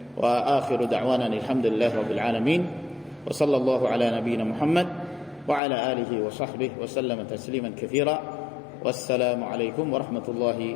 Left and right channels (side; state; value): right; drops out; at 5.6 s